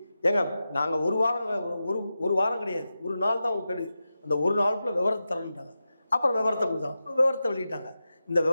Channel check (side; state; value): both; inverted; correlation -0.92